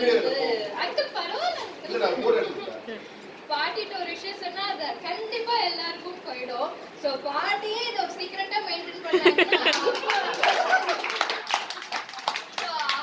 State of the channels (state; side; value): identical; both; correlation 1.00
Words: அங்கிள் பரவாயில்ல பாட்டிட்ட ஒரு விஷயம் சொன்னா அது கண்டிப்பா எல்லாருக்கும் போயிடும். சோ பாட்டியே இதை சீக்கிரட்டா மெயின்டைன் பண்ணாங்கன்னா